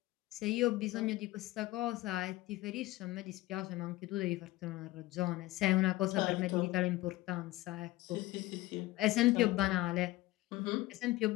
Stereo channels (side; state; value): right; quieter; 18.1 dB